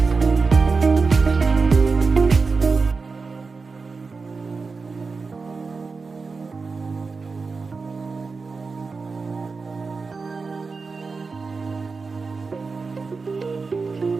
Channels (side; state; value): left; quieter; 4.4 dB